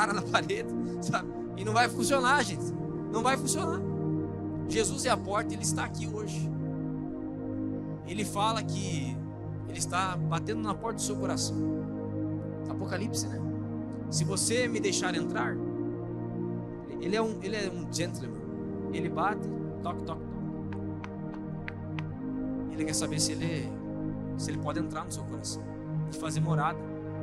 na parede, sabe? E não vai funcionar, gente. Não vai funcionar. Jesus é a porta, Ele está aqui hoje. Ele fala que Ele está batendo na porta do seu coração. Apocalipse, né? Se você me deixar entrar, Ele é um gentleman. Ele bate, toque, toque, toque. Ele quer saber se ele pode entrar no seu coração e fazer morada.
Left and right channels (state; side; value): identical; both; correlation 1.00